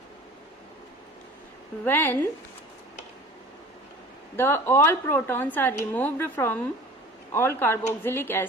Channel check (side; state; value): both; normal; correlation 0.42